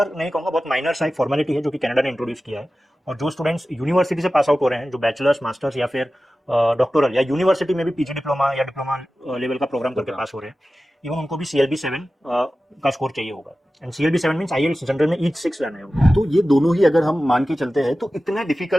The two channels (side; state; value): both; normal; correlation 0.95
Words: नहीं कहूंगा, बहुत माइनर सा एक फॉर्मेलिटी है जो कि कनाडा ने इंट्रोड्यूस किया है। और जो स्टूडेंट्स यूनिवर्सिटी से पास आउट हो रहे हैं, जो बैचलर्स, मास्टर्स या फिर डॉक्टोरल या यूनिवर्सिटी में भी PG डिप्लोमा या डिप्लोमा लेवल का प्रोग्राम करके पास हो रहे हैं, इवन उनको भी CLB 7 का स्कोर चाहिए होगा। And CLB 7 means IELTS general में ईच 6 लाना है। तो ये दोनों ही अगर हम मान के चलते हैं तो इतना